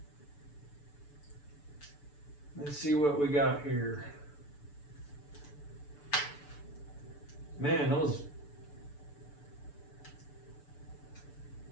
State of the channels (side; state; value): right; late; 6.9 ms